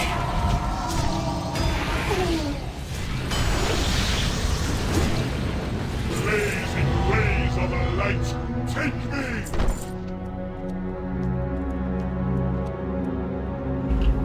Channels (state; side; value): identical; both; correlation 1.00